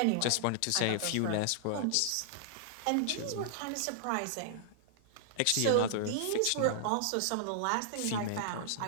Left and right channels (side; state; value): both; different; correlation -0.01